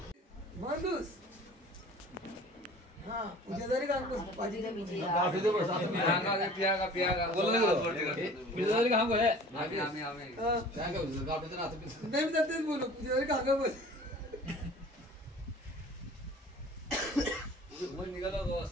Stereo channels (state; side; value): normal; both; correlation 0.45